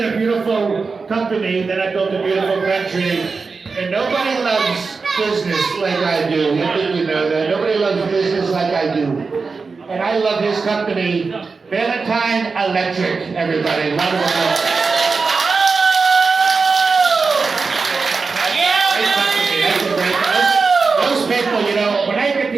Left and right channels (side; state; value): left; quieter; 4.5 dB